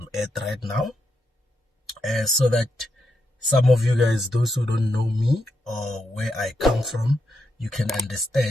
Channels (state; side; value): normal; both; correlation 0.83